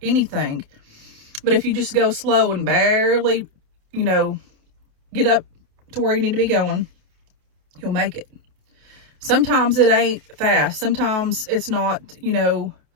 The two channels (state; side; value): late; left; 28 ms